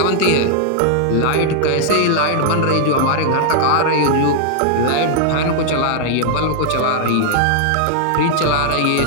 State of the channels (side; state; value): both; different; correlation 0.00